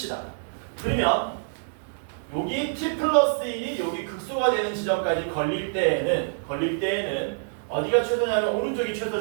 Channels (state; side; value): silent; left; 61 dB below the other